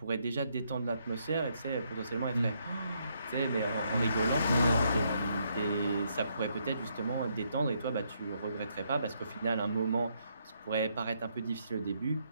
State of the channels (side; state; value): both; inverted; correlation -0.75